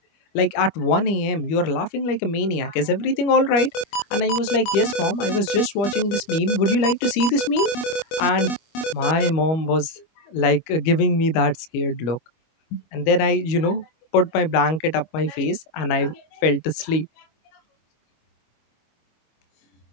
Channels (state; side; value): late; right; 25 ms